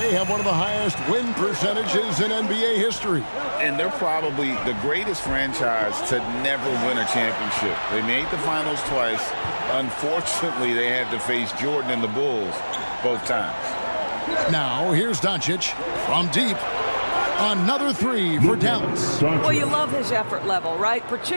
have one of the highest win percentages in NBA history. And they're probably the greatest franchise to never win a championship. They made the finals twice. Unfortunately, they had to face Jordan and the Bulls both times. Now, here's Doncic from deep. Another 3 for Dallas. Well, you love his effort level, right?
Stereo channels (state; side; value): inverted; both; correlation -1.00